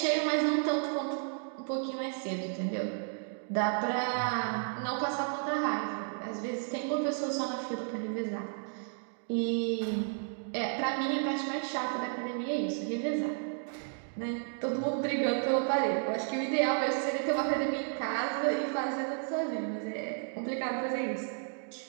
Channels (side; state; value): left; silent; 56 dB below the other